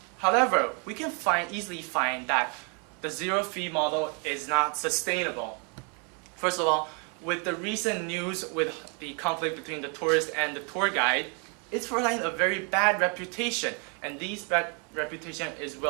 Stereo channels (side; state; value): left; quieter; 36.5 dB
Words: However, we can easily find that the zero-fee model is not sustainable. First of all, with the recent news with the conflict between the tourist and the tour guide, it's providing a very bad reputation, and this bad reputation is